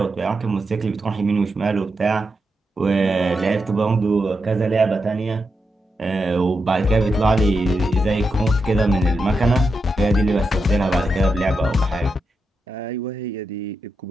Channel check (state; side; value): normal; both; correlation 0.86